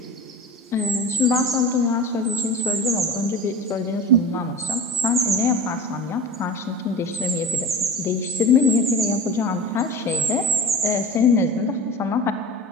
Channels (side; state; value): both; normal; correlation 0.34